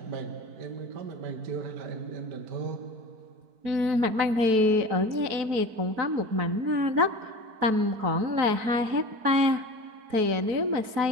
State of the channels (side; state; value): left; late; 4.6 ms